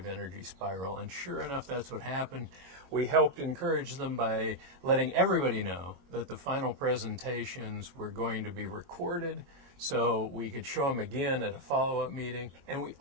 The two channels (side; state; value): left; late; 22 ms